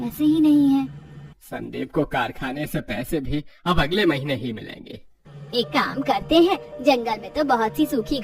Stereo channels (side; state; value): both; identical; correlation 1.00